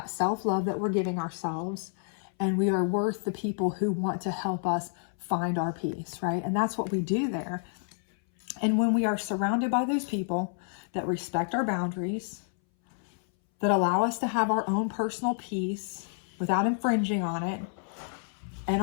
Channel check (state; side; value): silent; right; 58 dB below the other